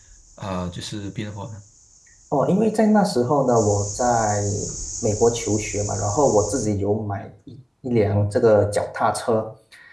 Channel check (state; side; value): identical; both; correlation 1.00